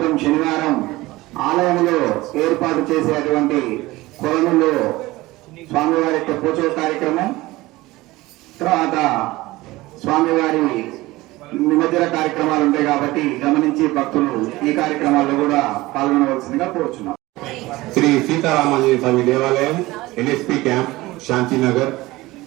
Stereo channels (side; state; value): left; quieter; 19.3 dB